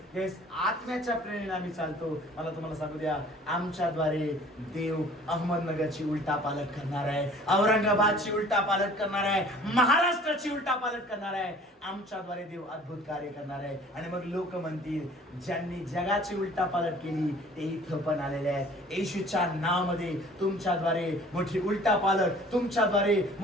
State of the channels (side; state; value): both; normal; correlation 0.50